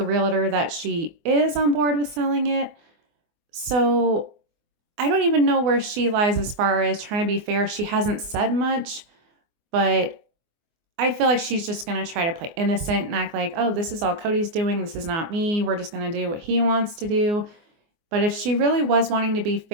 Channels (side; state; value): left; late; 24 ms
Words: realtor that she is on board with selling it. So I don't even know where she lies as far as trying to be fair. She hasn't said much, but I feel like she's just going to try to play innocent and act like, oh, this is all Cody's doing. This is not me. We're just going to do what he wants to do. But if she really was wanting to be